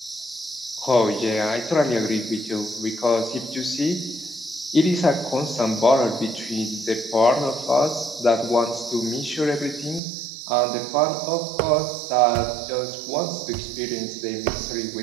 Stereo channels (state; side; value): drops out; left; at 10.0 s